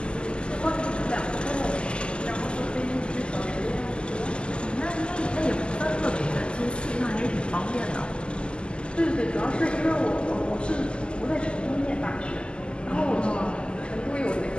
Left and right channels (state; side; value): late; right; 0.050 ms